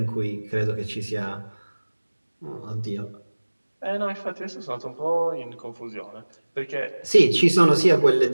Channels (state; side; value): inverted; both; correlation -1.00